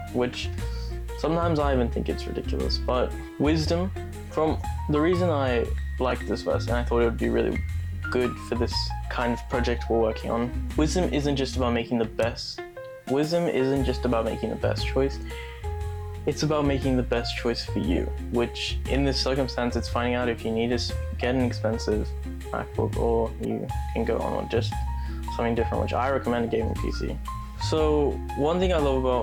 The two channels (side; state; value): both; identical; correlation 1.00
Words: which sometimes I even think it's ridiculous. But wisdom, from the reason I like this verse and I thought it would be really good for this kind of project we're working on, wisdom isn't just about making the best. Wisdom isn't just about making the best choice. It's about making the best choice for you, which in this circumstance, it's finding out if you need to get an expensive MacBook or you can go on with just something different, which I recommend a gaming PC. So one thing I love